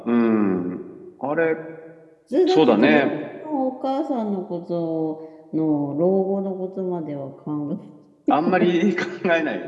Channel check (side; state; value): both; identical; correlation 1.00